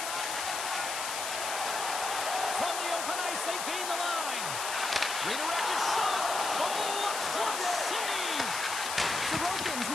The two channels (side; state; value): left; noise; hiss, 4 dB below the sound